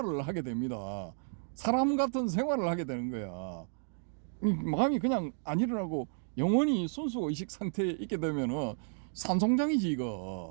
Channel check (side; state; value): left; silent; digital silence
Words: 하게 됩니다. 사람 같은 생활을 하게 되는 거야. 마음이 그냥 안 일어나고 영원히 순수의식 상태에 있게 되면은 산송장이지